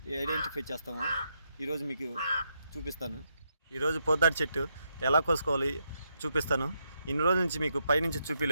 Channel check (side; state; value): both; inverted; correlation -0.79